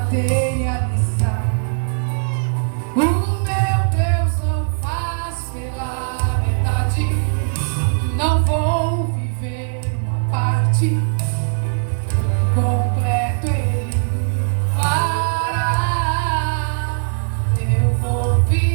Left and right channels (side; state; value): left; silent; digital silence